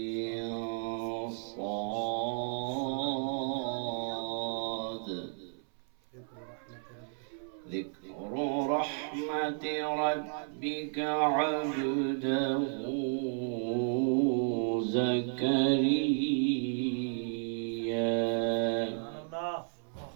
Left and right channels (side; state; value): left; silent; 56 dB below the other